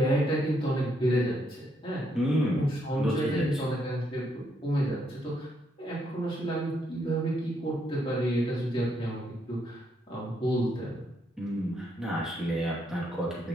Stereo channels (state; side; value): normal; both; correlation 0.75